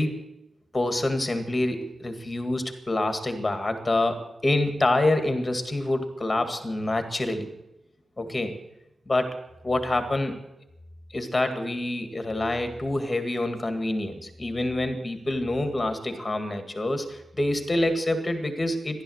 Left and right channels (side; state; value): both; normal; correlation 0.95